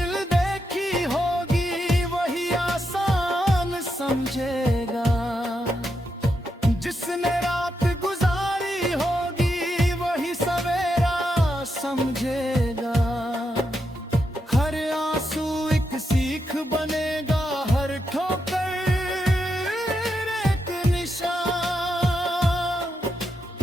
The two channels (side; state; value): both; normal; correlation 0.84